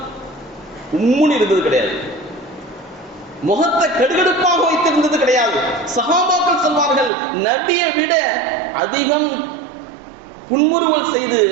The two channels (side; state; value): left; drops out; at 7.1 s